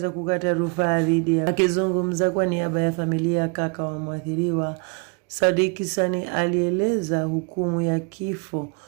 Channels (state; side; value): quieter; left; 33.2 dB